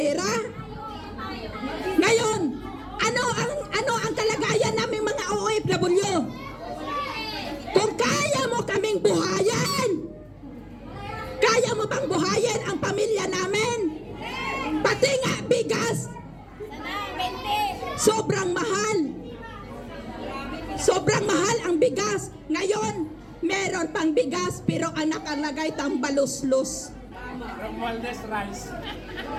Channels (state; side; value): identical; both; correlation 1.00